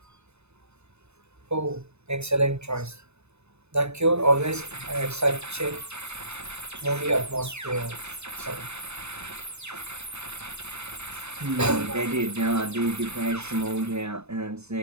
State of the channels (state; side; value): late; left; 0.81 ms